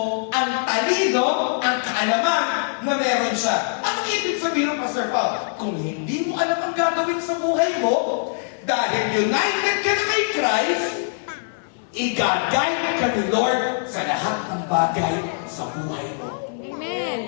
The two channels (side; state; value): right; silent; digital silence